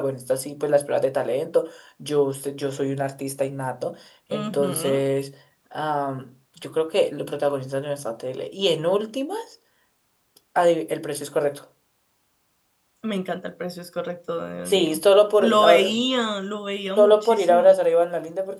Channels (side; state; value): both; identical; correlation 1.00